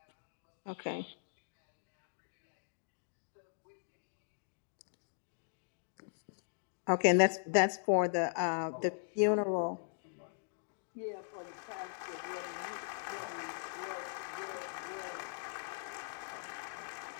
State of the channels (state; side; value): silent; right; digital silence